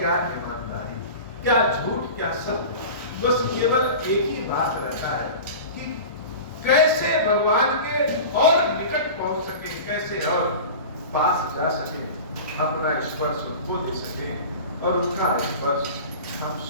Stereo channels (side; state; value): both; inverted; correlation -0.34